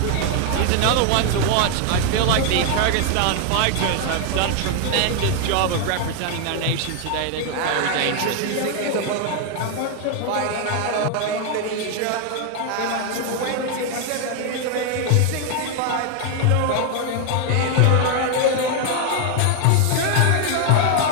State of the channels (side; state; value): both; different; correlation 0.00